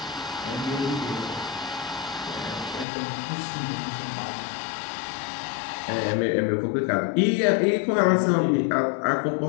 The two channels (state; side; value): drops out; right; at 2.9 s